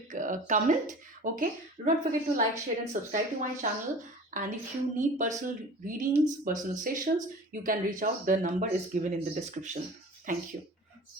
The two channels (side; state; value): both; normal; correlation 0.41